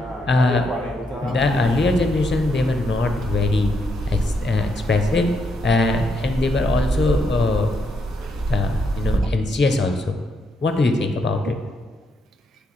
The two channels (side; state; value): both; normal; correlation 0.78